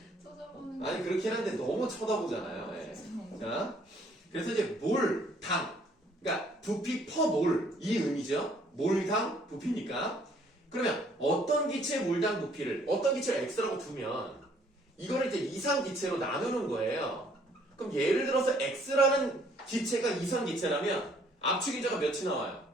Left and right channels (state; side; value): normal; both; correlation 0.63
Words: 찾아보는 게. 아니 그렇긴 한데 너무 쳐다보잖아요. 예. 자, 그래서 이제 몰당, 그러니까 부피 퍼 몰 이 의미죠. 몰당 부피니까. 그러면 어떤 기체의 몰당 부피를 어떤 기체를 x라고 두면 이거를 이제 이상 기체로 나누는 거예요. 그럼 예를 들어서 X라는 기체가 이상기체라면 압축인자가 몇이 나와요?